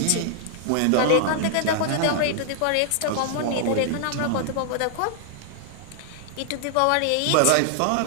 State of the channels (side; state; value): both; different; correlation -0.01